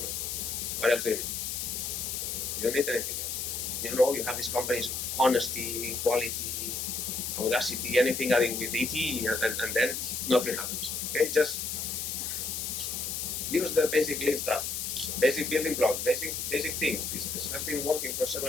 What else do you need? You don't need anything else. You have these companies, honesty, quality, audacity, anything adding with ET, and then nothing happens. Okay, just use the basic Lean stuff. Basic building blocks, basic things. This has been working for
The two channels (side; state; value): left; noise; hiss, 3 dB below the sound